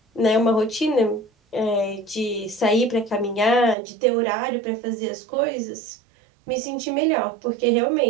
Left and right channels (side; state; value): left; drops out; at 3.8 s